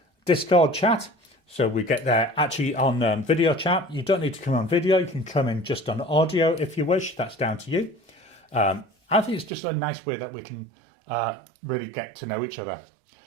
Discord chat. So we get there actually on video chat. You don't need to come on video. You can come in just on audio if you wish. That's down to you. I think it's just a nice way that we can really get to know each other.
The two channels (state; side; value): drops out; left; at 9.5 s